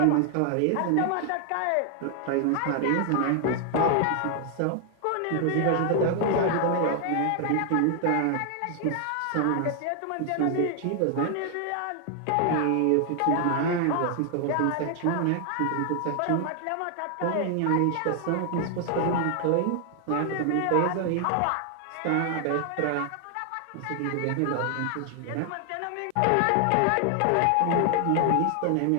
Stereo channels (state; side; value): different; both; correlation 0.00